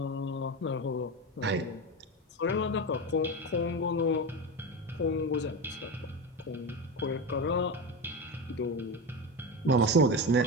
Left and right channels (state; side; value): normal; both; correlation 0.20